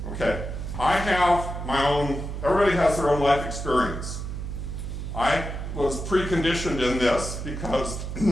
Okay. I have my own, everybody has their own life experience. I was preconditioned in this because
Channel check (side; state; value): right; noise; hum, 6 dB below the sound